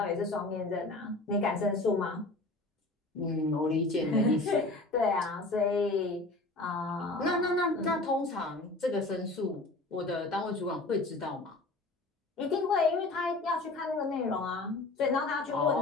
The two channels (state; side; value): quieter; right; 3.0 dB